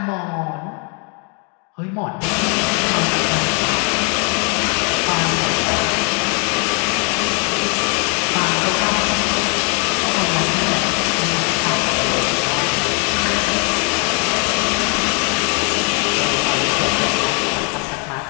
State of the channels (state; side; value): quieter; right; 36.7 dB